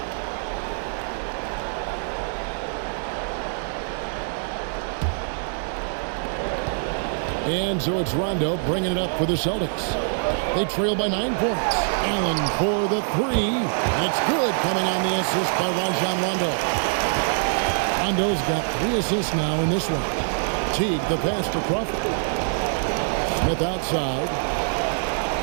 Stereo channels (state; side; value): silent; left; digital silence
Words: And so it's Rondo bringing it up for the Celtics. They trail by 9 points. Allen for the three. And it's good, coming on the assist by Rajon Rondo. Rondo's got 3 assists now in this one. Teague the pass to Crawford. Smith outside.